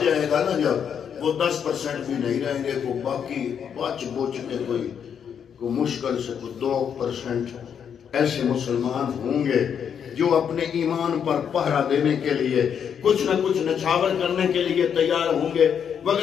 جائے گا نا، جب وہ 10% بھی نہیں رہیں گے، کو باقی بچ بوچھ کے کوئی مشکل سے کوئی 2% ایسے مسلمان ہوں گے جو اپنے ایمان پر پہرا دینے کے لیے کچھ نہ کچھ نچھاور کرنے کے لیے تیار ہوں گے،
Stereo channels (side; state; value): right; quieter; 7.9 dB